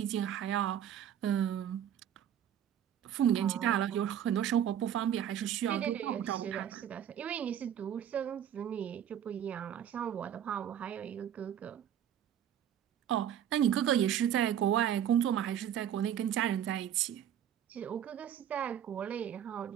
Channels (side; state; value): left; quieter; 9.8 dB